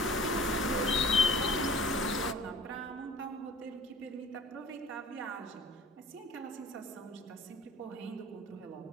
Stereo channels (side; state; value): both; normal; correlation 0.45